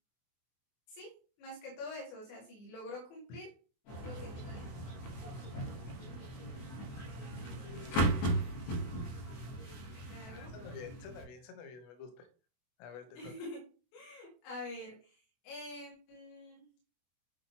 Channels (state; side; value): late; right; 24 ms